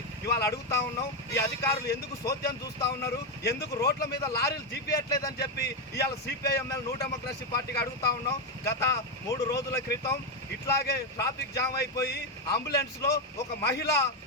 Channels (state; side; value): normal; both; correlation 0.06